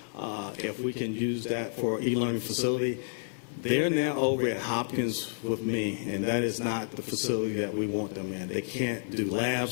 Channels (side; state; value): right; silent; digital silence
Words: if we can use that for e-learning facility. They're now over at Hopkins with me, and that is not the facility that we want them in. They can't do